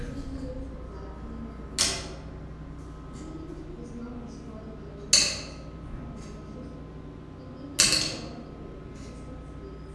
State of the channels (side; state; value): both; identical; correlation 1.00